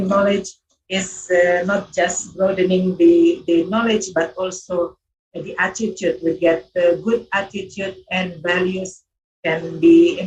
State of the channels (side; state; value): both; identical; correlation 1.00